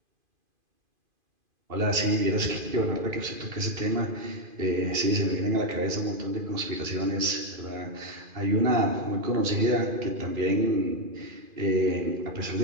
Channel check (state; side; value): late; left; 2.5 ms